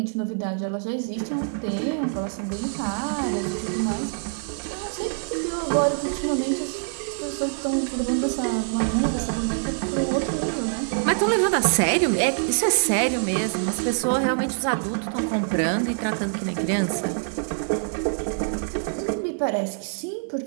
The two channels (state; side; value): silent; left; 62 dB below the other